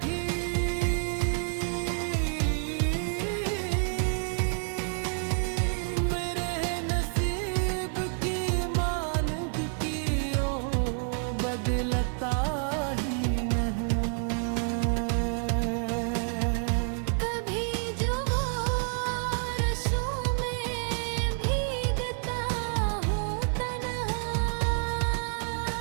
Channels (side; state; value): left; silent; digital silence